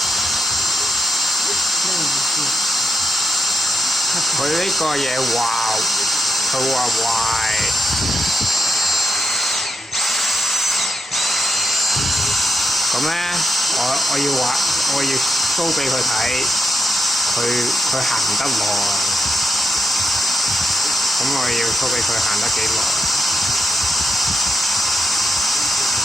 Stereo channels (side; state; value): both; normal; correlation 0.83